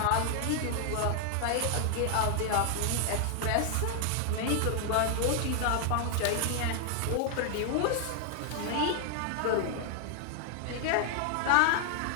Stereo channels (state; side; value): different; both; correlation 0.00